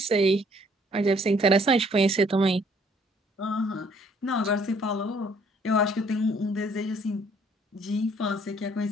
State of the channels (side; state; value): both; normal; correlation 0.62